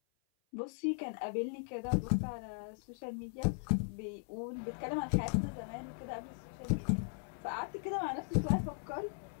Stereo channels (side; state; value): right; silent; 52 dB below the other